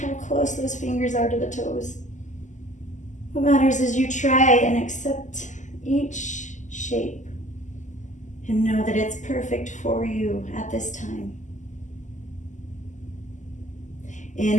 close those fingers are to the toes. What matters is you try and accept each shape and know that it's perfect for you at this time.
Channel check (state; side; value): late; right; 0.36 ms